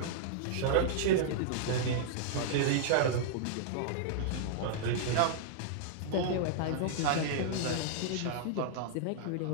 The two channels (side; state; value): both; different; correlation -0.01